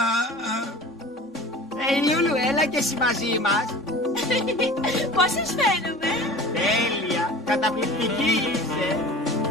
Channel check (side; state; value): both; normal; correlation 0.40